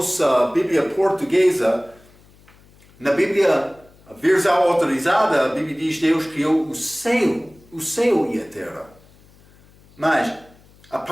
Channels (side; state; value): left; noise; hum, 28 dB below the sound